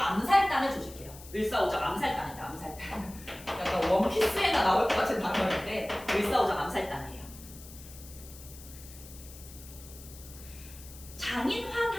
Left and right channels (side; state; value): left; noise; hiss, 17 dB below the sound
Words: 암살단을 조직해요. 을사오적 암살단이다. 암살단. 약간 원피스에나 나올 것 같은 단어인데 을사오적 암살단이에요.